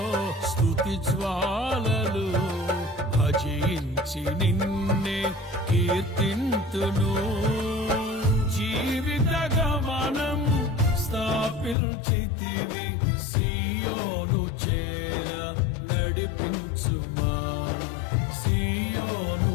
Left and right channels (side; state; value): right; drops out; at 11.8 s